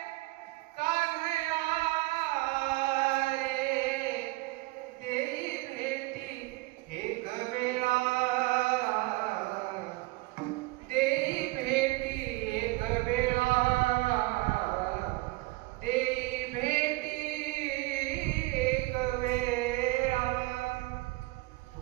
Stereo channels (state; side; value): quieter; left; 21.6 dB